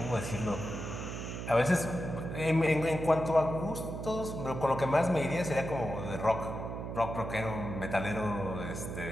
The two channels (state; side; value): noise; right; hum, 6 dB below the sound